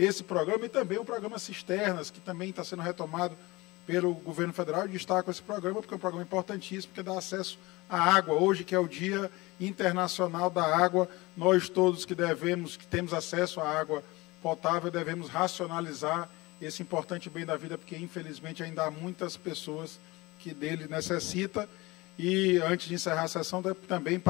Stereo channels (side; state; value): right; quieter; 22.2 dB